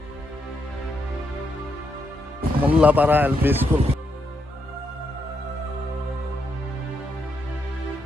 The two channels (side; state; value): both; normal; correlation 0.80